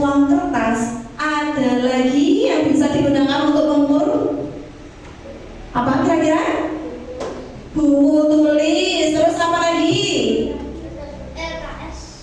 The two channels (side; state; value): both; identical; correlation 1.00